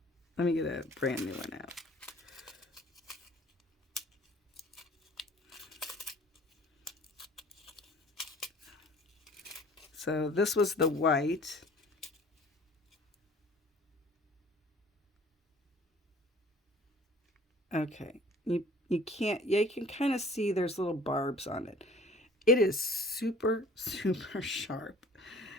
Let me get a brand new one out. So this was the white. Okay, you can kind of see there's little barbs on it. It is super, super sharp.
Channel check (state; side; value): normal; both; correlation 0.50